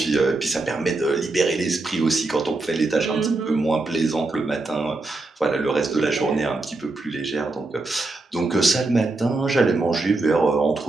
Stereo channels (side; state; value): left; quieter; 3.2 dB